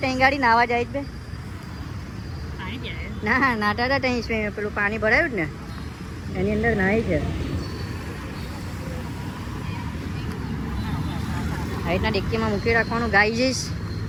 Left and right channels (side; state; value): both; identical; correlation 1.00